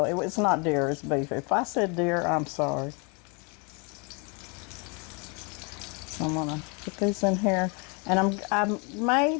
it's not deer, it's beef. If I said deer, I'm sorry. So I'm gonna put these in here. And I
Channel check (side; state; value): right; quieter; 33.3 dB